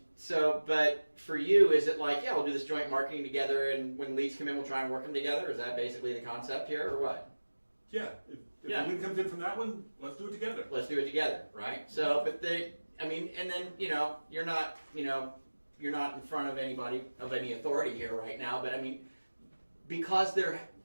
so, but for you, is it like, yeah, we'll do this joint marketing together, and when leads come in, we'll try and work them together? Is that basically the concept here, or what? Yeah, if Yeah. the lead comes in from that one, let's do it together. Let's do it together, right? So, but and then you're not in front of anybody of any authority here right now, but I mean, because they're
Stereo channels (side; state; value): both; inverted; correlation -1.00